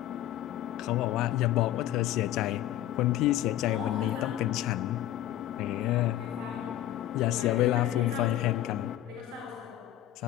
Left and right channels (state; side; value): quieter; right; 13.1 dB